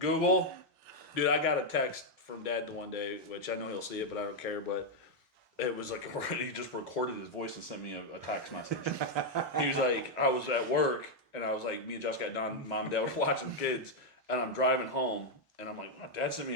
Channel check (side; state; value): both; normal; correlation 0.00